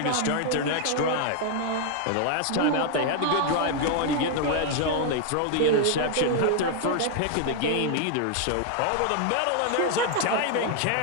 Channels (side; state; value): both; different; correlation 0.00